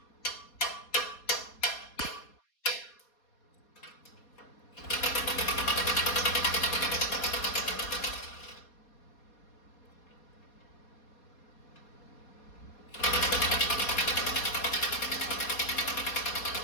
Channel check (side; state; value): right; late; 4.2 ms